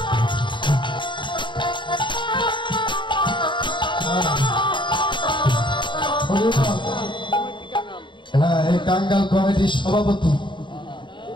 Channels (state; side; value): late; right; 0.23 ms